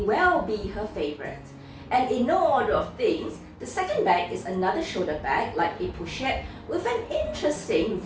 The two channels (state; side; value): identical; both; correlation 1.00